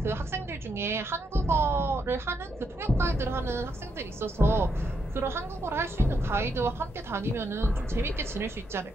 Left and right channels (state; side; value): normal; both; correlation 0.79